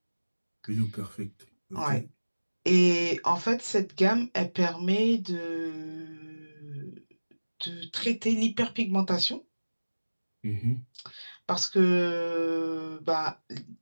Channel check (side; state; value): both; inverted; correlation -1.00